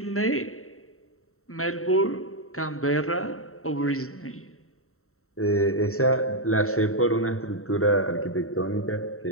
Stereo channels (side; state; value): right; late; 0.63 ms